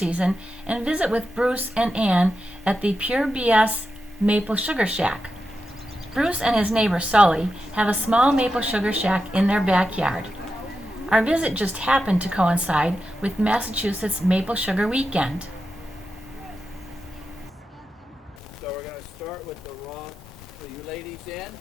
and visit with Bruce and Ann at the Pure BS Maple Sugar Shack. Bruce and his neighbor Sully have a small maple sugar shack in their backyard. Our visit just happened to coincide with Massachusetts Maple Sugar Weekend. So we're going to start with the raw. Are you ladies in?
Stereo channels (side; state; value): both; normal; correlation 0.89